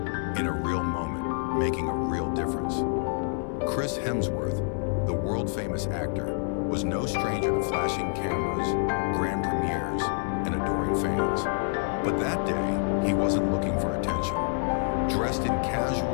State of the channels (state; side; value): silent; right; 57 dB below the other